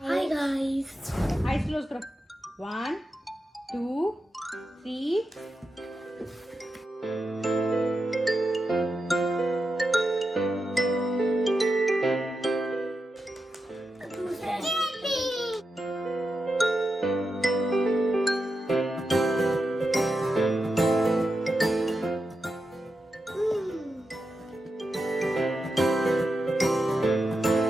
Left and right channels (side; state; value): both; normal; correlation 0.88